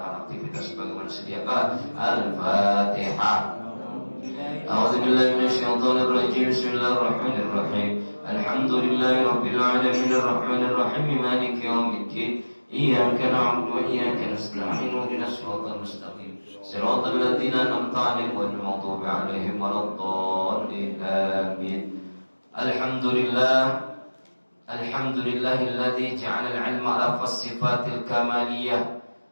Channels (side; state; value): both; inverted; correlation -1.00